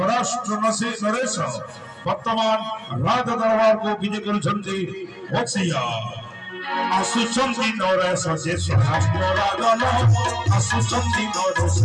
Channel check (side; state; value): both; identical; correlation 1.00